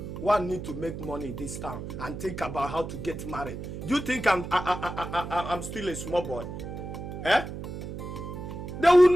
one need to make money in this town and think about how to get married. Do you think I'm still a small boy? Eh? They will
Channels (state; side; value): noise; right; hum, 8 dB below the sound